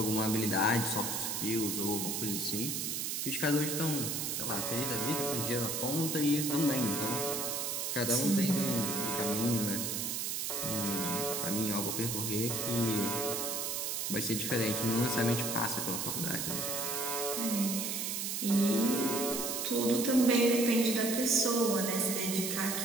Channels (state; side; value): noise; right; hiss, 1 dB below the sound